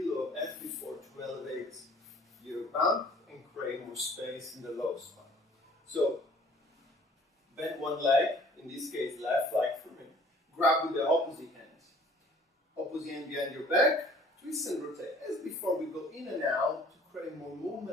of F4 to elevate your bump and create more space in the low spine. So, bend one leg, in this case left leg for me. Grab with the opposite hand. Opposite hand behind your back, twist and rotate. As before, we go in and out to create more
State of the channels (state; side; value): normal; both; correlation 0.53